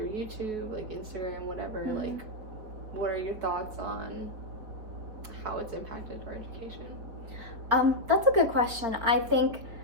YouTube, Instagram, whatever. What are your thoughts on how it's impacted our education? That's a good question. I think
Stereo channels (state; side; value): late; left; 4.7 ms